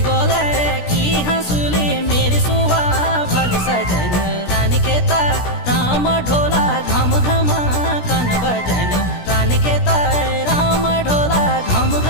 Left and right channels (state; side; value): late; right; 17 ms